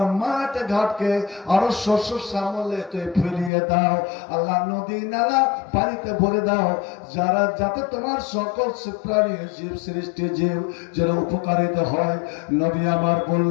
মাঠ ঘাটকে আরো শস্য শ্যামলে তুমি ফেলিয়ে দাও, আল্লাহ নদী নালা পানিতে ভরে দাও, যারা যাতে তোমার সকল প্রাণী জীব সৃষ্টি জীব যেন উপকারিত হয়। নবী আমার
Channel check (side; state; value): right; drops out; at 3.5 s